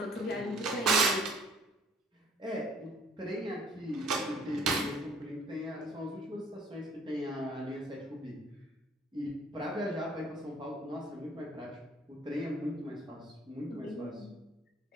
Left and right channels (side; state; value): both; normal; correlation 0.57